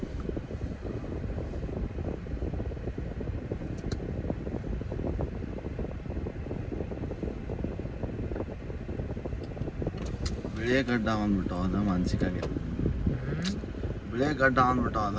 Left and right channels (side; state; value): both; identical; correlation 1.00